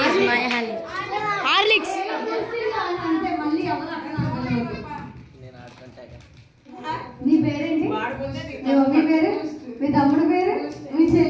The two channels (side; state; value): both; identical; correlation 1.00